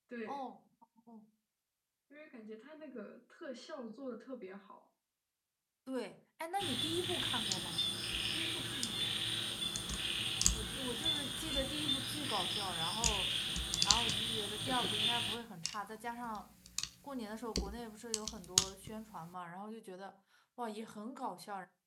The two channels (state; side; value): identical; both; correlation 1.00